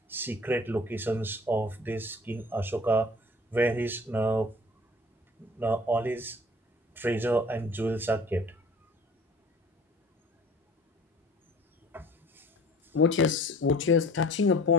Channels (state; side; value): normal; both; correlation 0.47